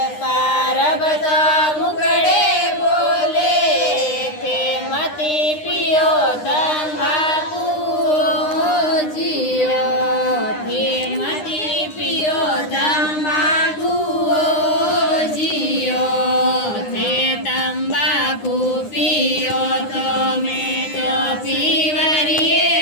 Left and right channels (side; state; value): right; late; 9.8 ms